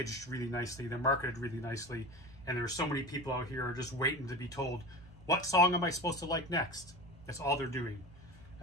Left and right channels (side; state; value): both; normal; correlation 0.30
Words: really nicely, they're marketed really nicely, and there are so many people out here who are just waiting to be told, what song am I supposed to like next? That's all they're doing.